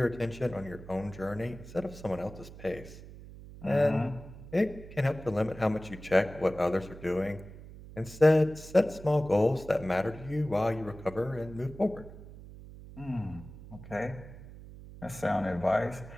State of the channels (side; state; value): right; noise; hum, 16 dB below the sound